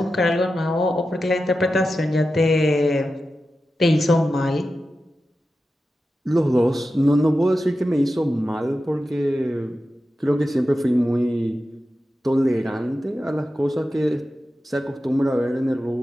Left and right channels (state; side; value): normal; both; correlation 0.92